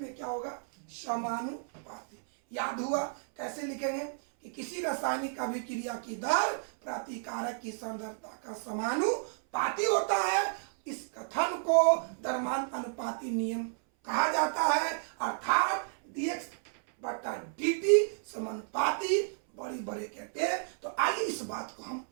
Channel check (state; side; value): silent; left; 56 dB below the other